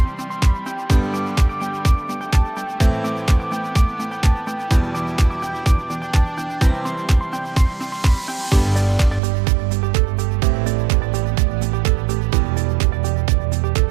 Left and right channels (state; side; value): drops out; left; at 9.2 s